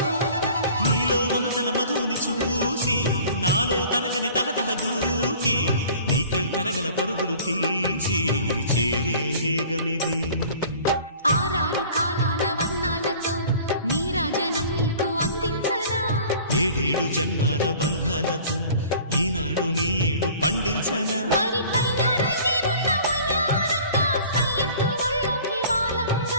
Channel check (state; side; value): inverted; both; correlation -0.47